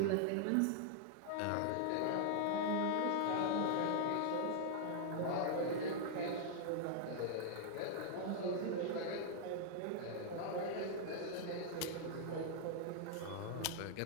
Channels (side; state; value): both; different; correlation 0.00